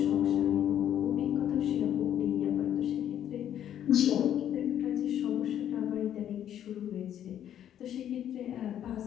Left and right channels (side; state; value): right; quieter; 10.4 dB